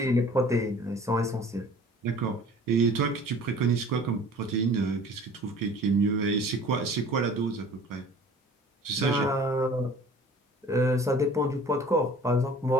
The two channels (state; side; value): normal; both; correlation 0.47